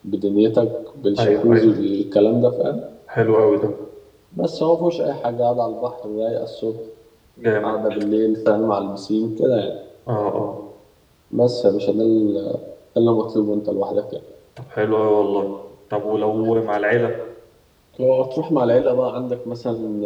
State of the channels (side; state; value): both; identical; correlation 1.00